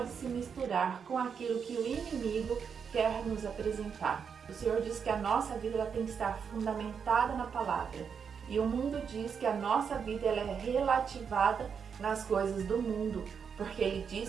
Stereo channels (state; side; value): quieter; left; 6.7 dB